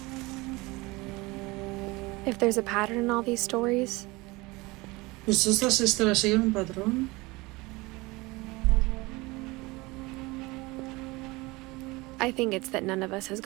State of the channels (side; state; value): left; quieter; 22.9 dB